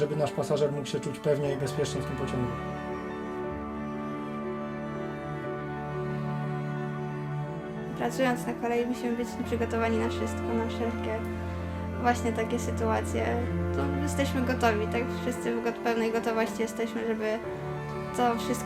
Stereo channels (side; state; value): right; noise; hum, 28 dB below the sound